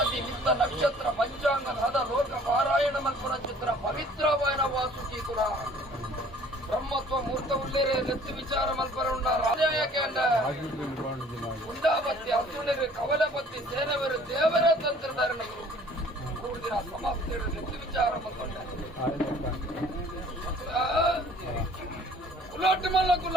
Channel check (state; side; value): normal; both; correlation 0.54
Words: ನಿತ್ತ ನಕ್ಷತ್ರ ಪಂಚಾಂಗದ ಹದ ಲೋಕ ಪಾರಾಯಣ ಮಲ್ಪುರ ಚಿತ್ರ ಪವಿತ್ರವಾಯನ ವಾಸುಕಿ ಕುಲ ಬ್ರಹ್ಮತ್ವ ಮೂರ್ತ ಉಳ್ಳೇರೆ ನೆತ್ತು ವಿಚಾರ ಮಲ್ಪರ ಉಂಡ ರಾಜಾಯಕೇಂಡ ಉಂಡಾಪತ್ತಿ ಅಸುಣಿರು ಕವಲಪತ್ತಿ ಸೇನವರು ದೇವರ ತಂತ್ರಧಾರಣೆಗಳು ಕೂಡಿನ ಸಮಾಪ್ತಿ ನೆತ್ತು ವಿಚಾರ ಮಲ್ಕೊಂಡ ಕುಲಾಟ ಮಲ್ಲ